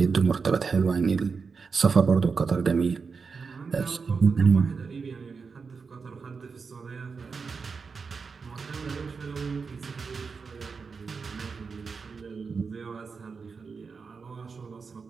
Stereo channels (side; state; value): left; quieter; 5.1 dB